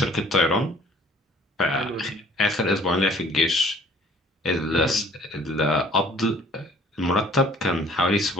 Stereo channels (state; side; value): normal; both; correlation 0.54